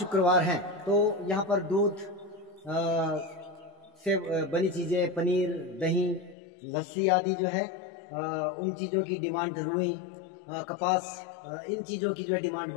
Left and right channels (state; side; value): drops out; right; at 6.4 s